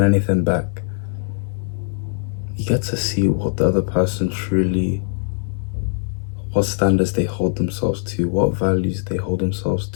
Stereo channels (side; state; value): right; silent; digital silence